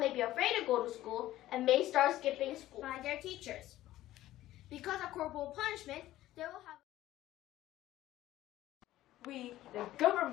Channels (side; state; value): right; quieter; 14.9 dB